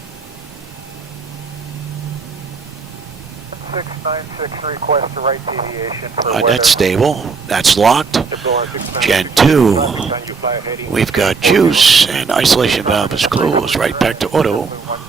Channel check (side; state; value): left; quieter; 5.0 dB